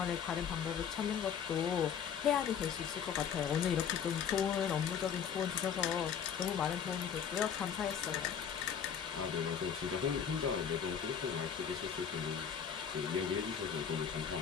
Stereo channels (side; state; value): right; quieter; 7.8 dB